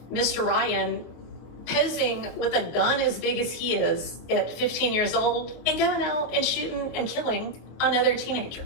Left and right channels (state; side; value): late; right; 24 ms